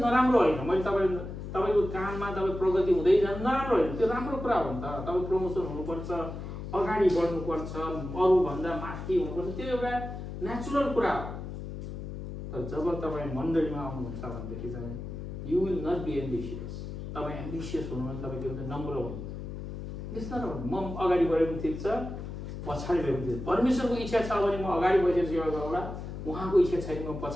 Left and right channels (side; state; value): left; noise; hum, 8 dB below the sound